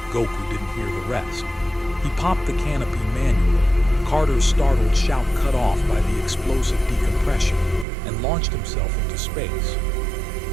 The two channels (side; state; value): left; drops out; at 7.9 s